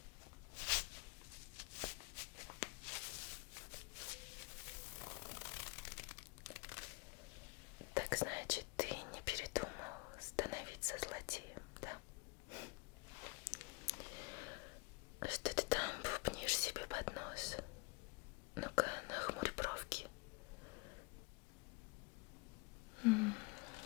Так значит, ты не передумал становиться злодеем, да? Что ты там бубнишь себе под нос? Ну-ка, нахмурь бровки.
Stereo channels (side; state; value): right; quieter; 27.4 dB